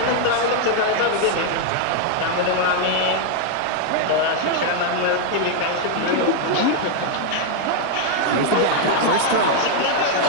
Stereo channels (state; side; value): different; both; correlation 0.00